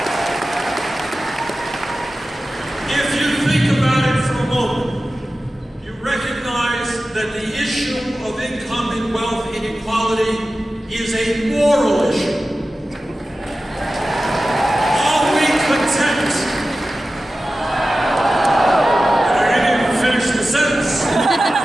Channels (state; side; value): normal; both; correlation 0.94